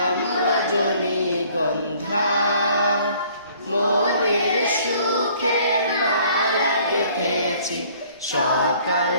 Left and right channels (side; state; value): both; inverted; correlation -0.57